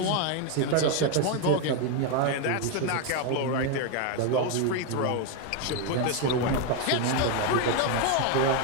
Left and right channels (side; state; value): both; different; correlation 0.01